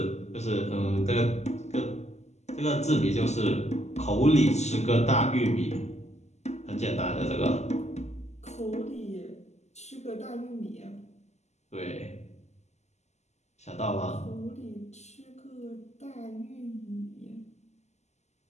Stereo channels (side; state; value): right; late; 0.33 ms